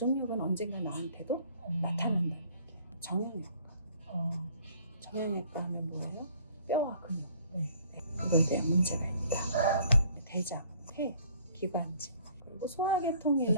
언젠가 나한테도 나타난다는 얘기예요. 정형외과. 정형외과 하면 뭐예요? 뼈와 근육. 그거에 대한 문제가 있다. 대장, 폐, 기관지, 그리고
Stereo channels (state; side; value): inverted; both; correlation -0.57